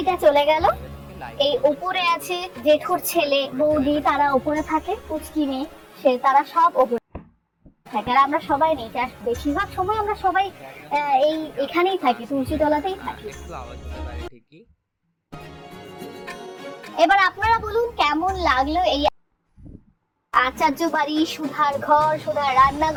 চলে গেল, এই উপরে আছে জেঠুর ছেলে বৌদি, তারা উপরে থাকে। পুচকি মেয়ে, সে তারা সব উপরে থাকে। আর আমরা সবাই নেই, বেশিরভাগ সময় আমরা সবাই এখানেই থাকি, তুলসী তলাতেই থাকি। একটু আওয়াজ হতে পারে ঠিকই। এবার আপনারা বলুন কেমন লাগলো এই আচার্য বাড়ি, সুধার ঘর, সুধার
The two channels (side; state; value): both; identical; correlation 1.00